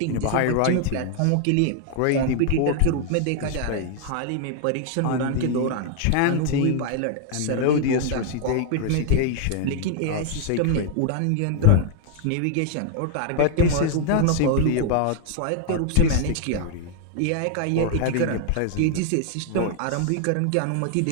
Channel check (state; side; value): different; both; correlation 0.00